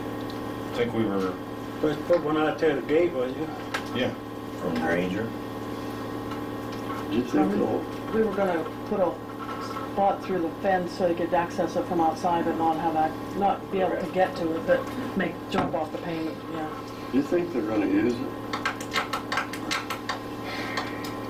think we were, Let's put one out there at the gate, was you? yeah. From Granger. Did you think so? We were gonna put a spot through the fence so you could access it from outside, but not be able to get to it, but jump off the payment, yeah. Do you think they're gonna use it?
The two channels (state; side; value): identical; both; correlation 1.00